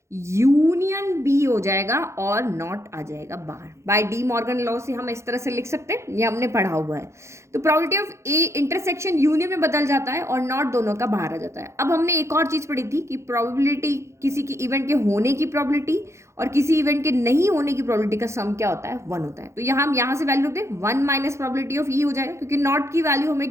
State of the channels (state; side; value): late; left; 0.14 ms